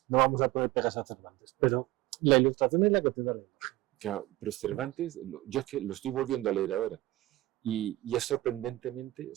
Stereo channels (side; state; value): left; quieter; 17.6 dB